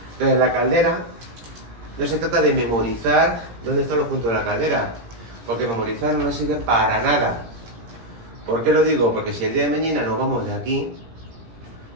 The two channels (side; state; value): left; late; 17 ms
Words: Entonces la caldera, no se trata de memorizar dónde están los puntos de la caldera, porque memorizar no nos sirve para nada. ¿Por qué lo digo? Porque si el día de mañana nos vamos de aquí